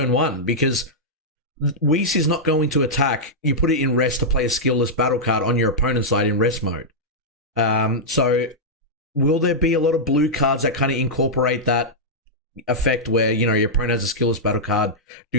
1, because Whis is not going to attack. You put it in rest to play a skillless battle card on your opponent's side in rest mode. So will there be a lot of blue cards that kind of incorporate that effect where, your opponent has a skillless battle card,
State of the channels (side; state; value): both; normal; correlation -0.08